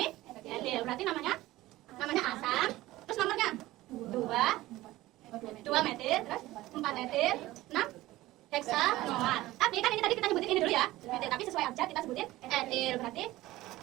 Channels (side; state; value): left; quieter; 17.2 dB